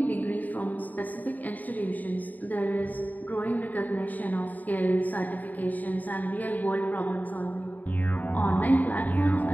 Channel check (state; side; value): late; right; 0.081 ms